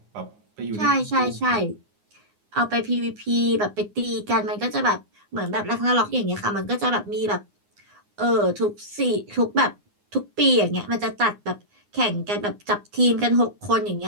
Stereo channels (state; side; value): late; left; 9.7 ms